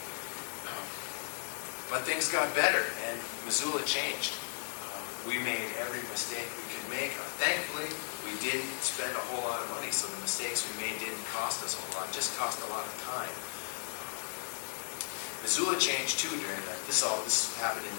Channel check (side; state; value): right; silent; digital silence